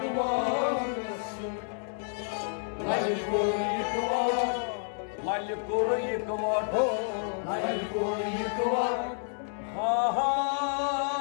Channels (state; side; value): silent; right; digital silence